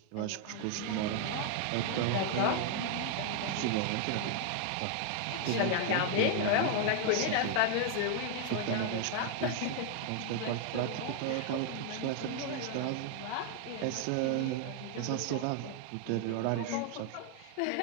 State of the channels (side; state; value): both; different; correlation 0.00